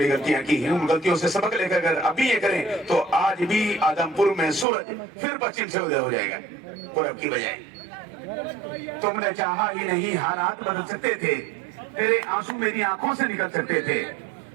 गलतियां की हैं। उन गलतियों से सबक लेकर अगर अभी ये करें तो आज भी आदमपुर में सूरज फिर पश्चिम से उदय हो जाएगा पूरब की बजाय। तुमने चाहा ही नहीं, हालात बदल सकते थे, तेरे आंसू मेरी आंखों से निकल सकते थे।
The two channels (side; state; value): left; drops out; at 4.7 s